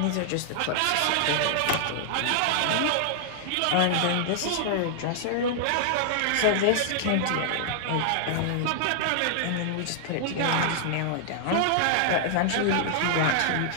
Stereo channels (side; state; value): both; different; correlation -0.01